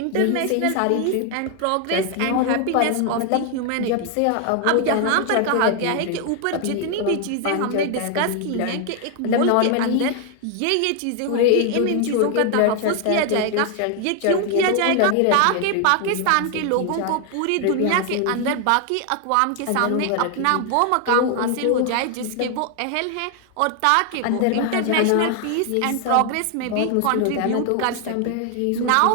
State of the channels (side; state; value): both; different; correlation 0.00